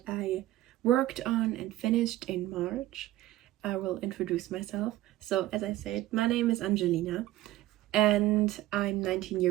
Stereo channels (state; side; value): quieter; left; 15.7 dB